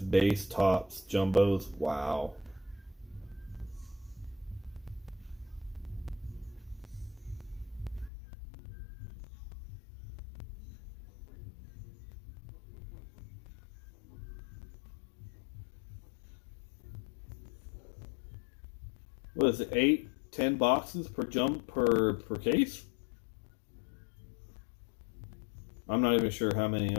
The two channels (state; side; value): drops out; right; at 8.1 s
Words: base tops, jumbos. Wow. What is it? 8, 10 boxes per per case? I'm not even sure how many.